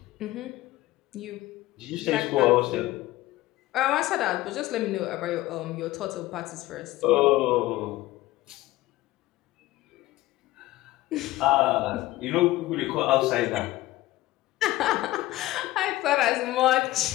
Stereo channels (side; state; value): right; quieter; 17.2 dB